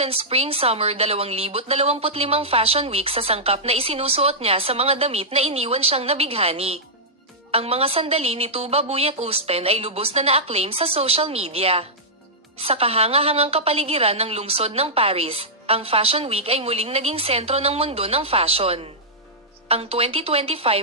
Spring Summer 2025 Fashion Week, sa sangkap na isinusuot niya sa mga damit na iniwan siyang nabighani. Ang mga sandali ni Tuba Buyak-Usten ay lubos na na-acclaim sa social media. Sa kahanga-hangang kapaligiran ng lungsod ng Paris, ang Fashion Week ay muling naging sentro ng mundo ng fashion. Ang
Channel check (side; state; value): both; normal; correlation -0.11